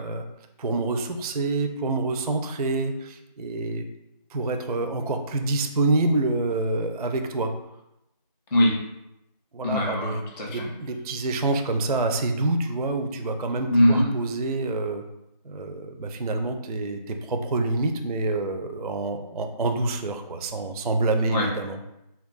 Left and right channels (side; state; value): both; inverted; correlation -0.62